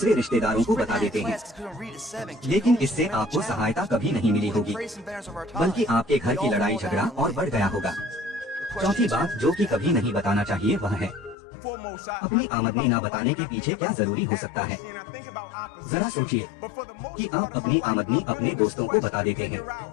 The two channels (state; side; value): drops out; right; at 11.4 s